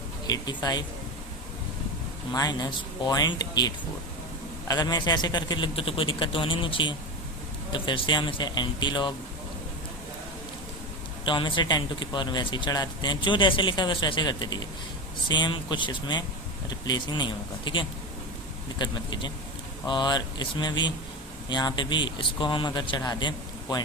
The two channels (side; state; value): both; normal; correlation 0.21